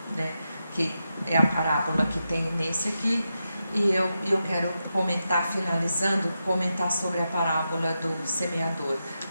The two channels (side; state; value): both; inverted; correlation -0.88